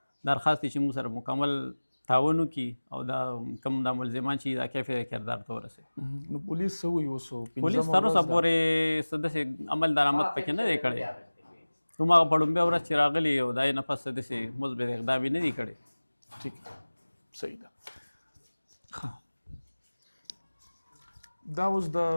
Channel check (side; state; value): both; inverted; correlation -1.00